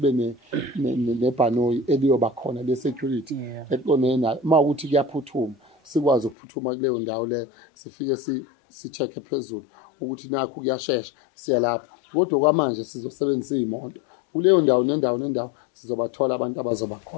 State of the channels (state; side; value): drops out; right; at 6.4 s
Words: nebhanoyi eliyoba khona le-security eqondene nayo. Uma ukuthi kuyaphuthuma sikwazi ukuphuthuma kuleyo ndawo leyo, sifike si-check phezulu ukuthi nakho kuyashesha siya lapho. Kodwa kwamanje sizosebenzisa iy'moto kuleyo ndawo nendawo sizobathola abantu abazoba